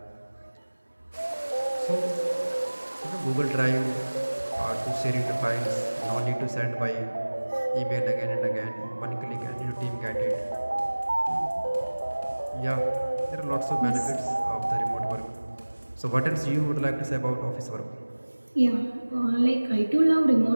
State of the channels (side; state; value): both; inverted; correlation -1.00